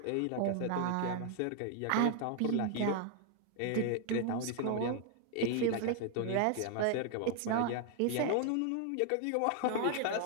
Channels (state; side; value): different; both; correlation 0.00